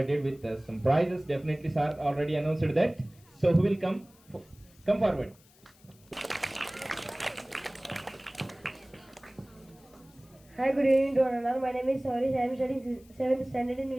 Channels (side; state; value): left; noise; hiss, 28 dB below the sound